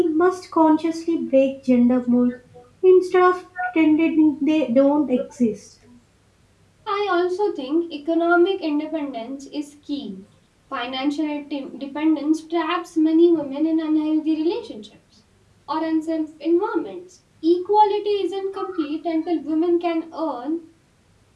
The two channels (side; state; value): both; identical; correlation 1.00